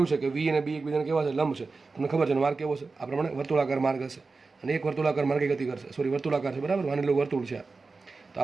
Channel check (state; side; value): quieter; left; 4.1 dB